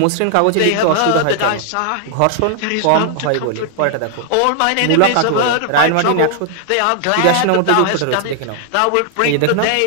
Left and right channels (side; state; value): both; different; correlation 0.00